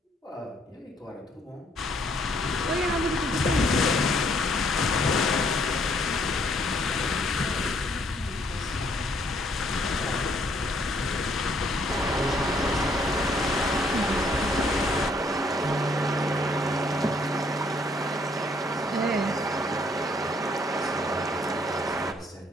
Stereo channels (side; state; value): both; normal; correlation 0.67